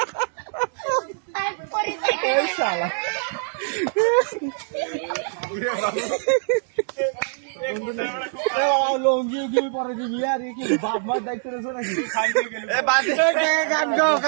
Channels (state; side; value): silent; left; digital silence